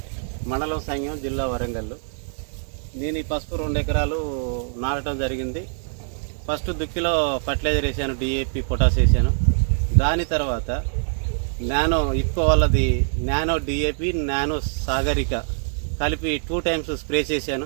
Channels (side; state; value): left; silent; digital silence